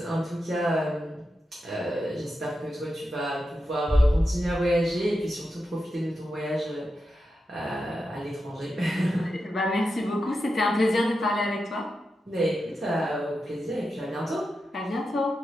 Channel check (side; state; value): both; normal; correlation 0.89